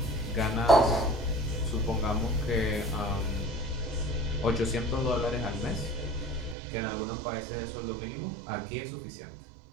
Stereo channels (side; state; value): left; drops out; at 6.6 s